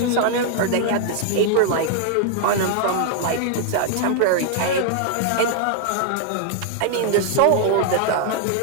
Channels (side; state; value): both; different; correlation 0.00